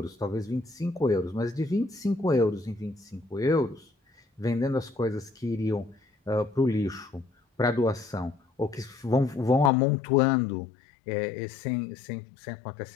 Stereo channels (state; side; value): drops out; right; at 9.7 s